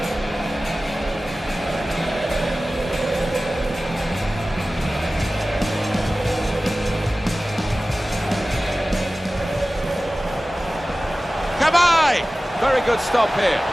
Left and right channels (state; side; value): normal; both; correlation 0.96